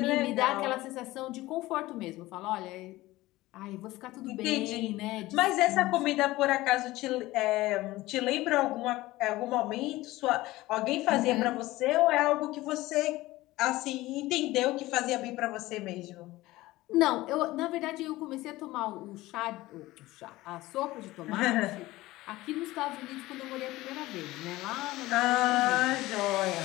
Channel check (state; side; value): quieter; right; 18.2 dB